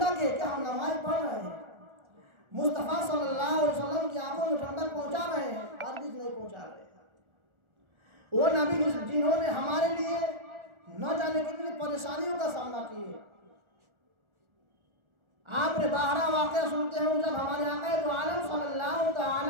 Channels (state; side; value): late; left; 1.4 ms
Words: है। क्या हम नमाज पढ़ रहे हैं? मुस्तफ़ा सल्लल्लाहु अलैहि वसल्लम की आंखों में ठंडक पहुंचा रहे हैं? हरगिज़ नहीं पहुंचा रहे। वो नबी जिन्होंने हमारे लिए न जाने कितनी परेशानियों का सामना किए। आपने बाहरा वाक़या सुनते हैं, जब हमारे आका दो आलम सल्लल्लाहु